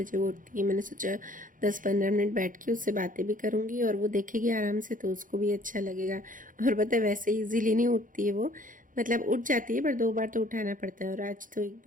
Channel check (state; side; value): late; left; 0.39 ms